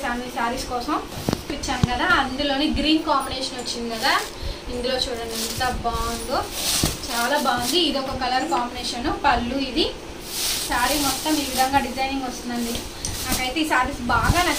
ఈ శారీస్ కోసం. ఇచ్చాను కదా, అందులోని గ్రీన్ కాంబినేషన్ వచ్చింది కదా. ఇందులో చూడండి ఎంత బాగుందో, చాలా బాగుంది. ఇది ఒక కలర్ కాంబినేషన్. పళ్ళు ఇది. శారీ మొత్తం ఈ విధంగా డిజైనింగ్ వస్తుందండి. నాకైతే ఈ శారీస్ బాగా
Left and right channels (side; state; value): both; identical; correlation 1.00